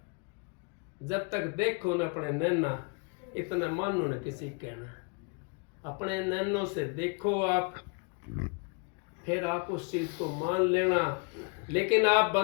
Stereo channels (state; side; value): quieter; right; 35.3 dB